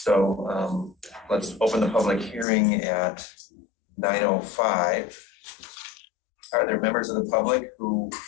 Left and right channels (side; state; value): right; drops out; at 2.5 s